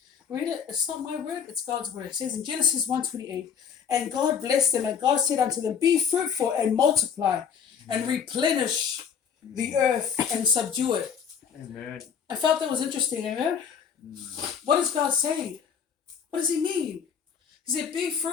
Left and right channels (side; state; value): right; quieter; 7.3 dB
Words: read it. It's not my word, it's God's word. It says in Genesis 1:28, and God blessed them, and God said unto them, be fruitful and multiply, and replenish the earth and subdue it. Amen. I felt that was interesting, amen? What is God saying? What does he mean? He said, be